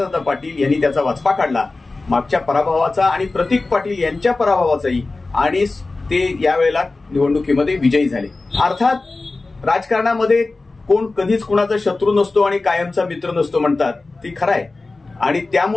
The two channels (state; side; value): quieter; right; 3.4 dB